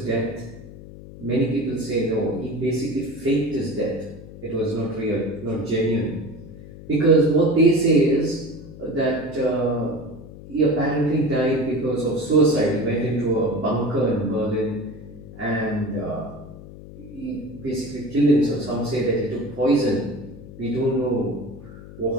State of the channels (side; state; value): left; noise; hum, 16 dB below the sound